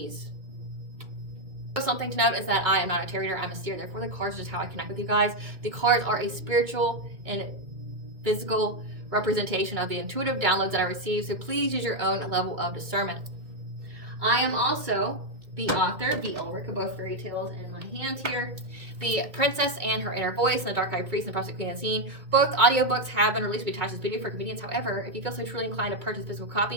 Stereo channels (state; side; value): late; left; 2.3 ms